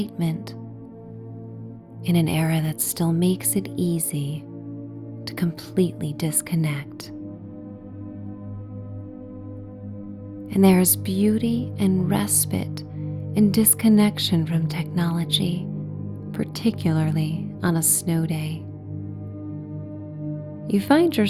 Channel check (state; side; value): identical; both; correlation 1.00